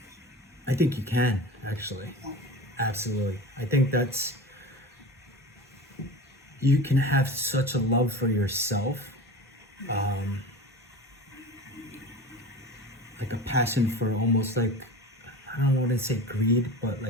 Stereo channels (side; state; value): both; normal; correlation 0.32